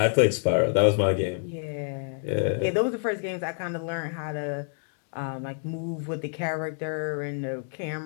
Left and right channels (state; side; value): silent; right; digital silence